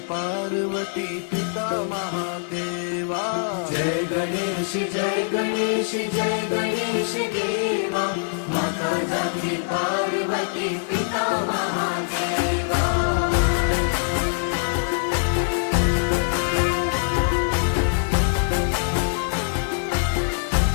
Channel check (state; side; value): silent; right; digital silence